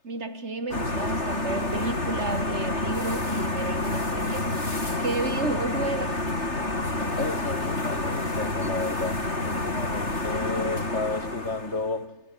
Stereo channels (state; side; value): late; left; 3.3 ms